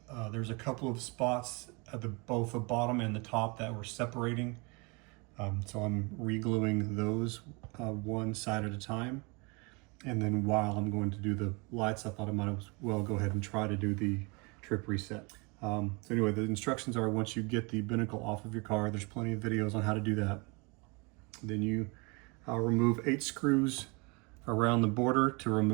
there's a couple of spots at both the bottom and the top that were separating. So I'm re-gluing those one side at a time. And then while I'm going to do the lights, I thought I might as well go ahead and try to do the trip reset. So anyway, the instructions are, once you get the binnacle off of your car, there's plenty of videos on how to do that. Then you remove 8 screws around the border to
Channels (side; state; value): left; quieter; 29.4 dB